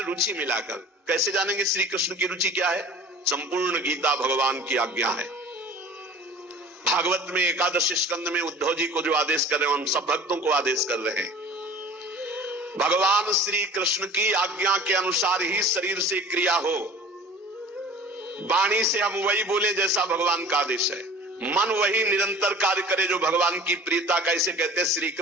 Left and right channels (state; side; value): normal; both; correlation 0.43